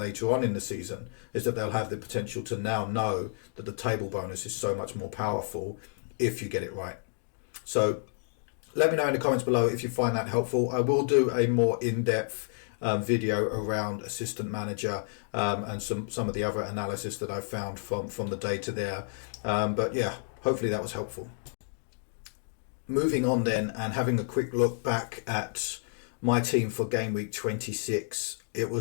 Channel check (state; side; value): silent; right; digital silence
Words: on in the season, is that they'll have the potential to now know that the table bonus is so much more powerful if you get it right. So let me know in the comments below if you find that helpful. I will do a more in-depth video around assistant manager and some of the other analysis that I found from the data there. But yeah, hopefully that was helpful. Moving on then, and having a quick look back at my team for game week 26, it